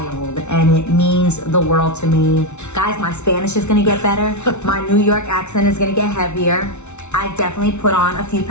and it means the world to me. Guys, my Spanish is gonna get better. My New York accent is gonna get heavier. I've definitely put on a few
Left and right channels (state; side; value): late; right; 0.82 ms